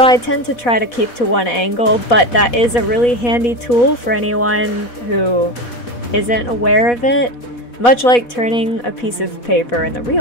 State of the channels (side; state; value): right; late; 4.1 ms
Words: I tend to try to keep to one angle, but that is a really handy tool for anyone who isn't aware of it. Much like turning a piece of paper in the